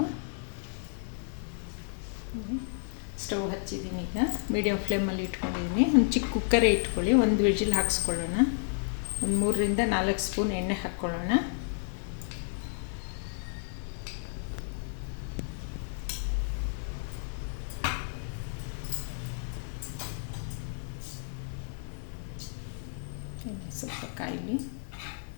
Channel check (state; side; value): silent; right; 57 dB below the other